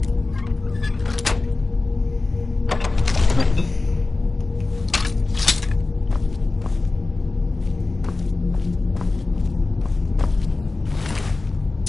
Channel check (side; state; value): right; quieter; 3.5 dB